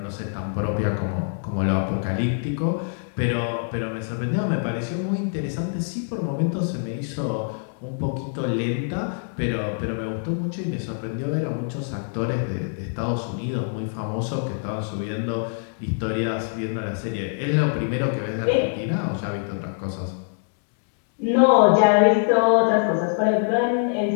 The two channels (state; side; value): silent; right; digital silence